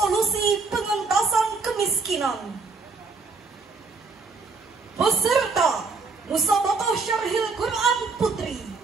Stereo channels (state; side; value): quieter; left; 4.3 dB